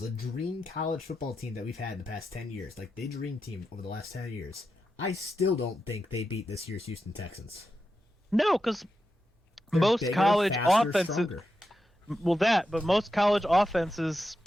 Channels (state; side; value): normal; both; correlation 0.88